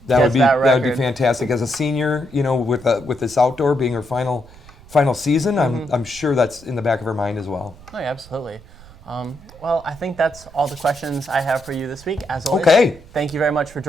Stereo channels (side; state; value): right; noise; rumble, 21 dB below the sound